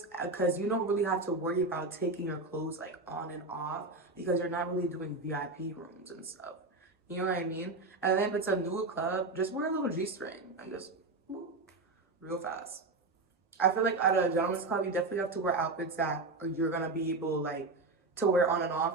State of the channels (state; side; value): quieter; left; 3.4 dB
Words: because you don't really have to worry about taking your clothes like on and off because you're not really doing VIP rooms and stuff. You know what I mean? And then if it's a new club, just wear a little G-string and just whoop, real fast. I feel like at a gentleman's club, you definitely have to wear outfits that you're gonna be able like to wear on and off.